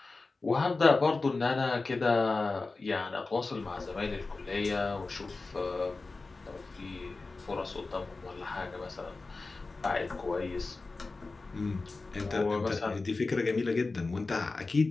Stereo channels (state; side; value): quieter; right; 3.7 dB